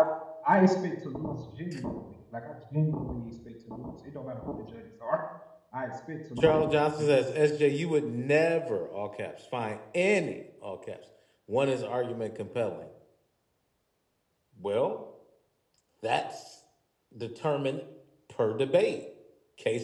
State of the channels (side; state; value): both; identical; correlation 1.00